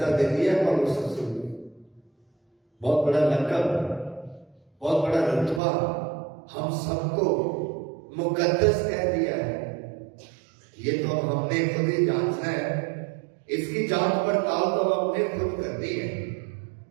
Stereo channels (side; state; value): left; drops out; at 5.6 s